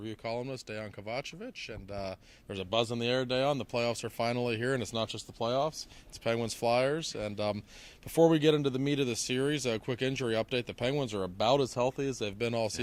columnist Dejan Kovacevic, and there's a buzz in the air, Dejan. The playoffs are finally here, and it's not just the playoffs. It's Penguins Flyers. And before we get into the meat of the series, a quick injury update. The Penguins are about as healthy as they've been all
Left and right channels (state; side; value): identical; both; correlation 1.00